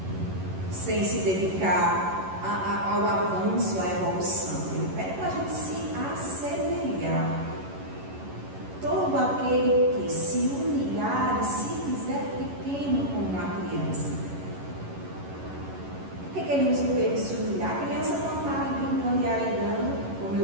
sem se dedicar ao avanço, à evolução. Ele pede para a gente se assemelhar. Todo aquele que se humilhar e se fizer pequeno como uma criança. Por que ele usa o termo se humilhar? A criança não está ali brincando e arengando, como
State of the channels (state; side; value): late; left; 11 ms